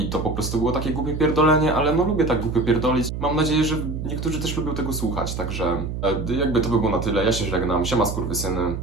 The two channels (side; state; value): right; noise; hum, 5 dB below the sound